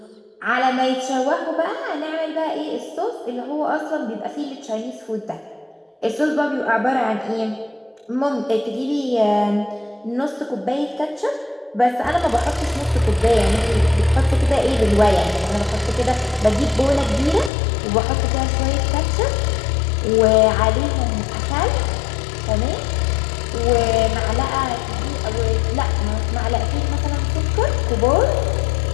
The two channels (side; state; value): right; drops out; at 17.5 s